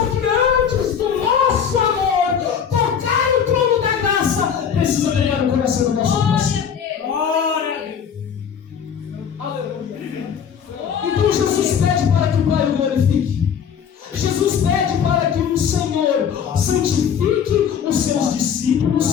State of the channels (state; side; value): quieter; right; 7.7 dB